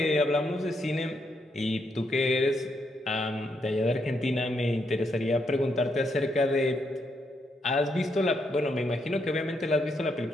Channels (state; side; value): normal; both; correlation 0.78